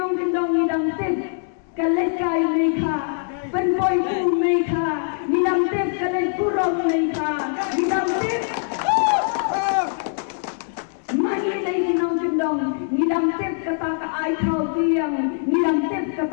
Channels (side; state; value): right; silent; digital silence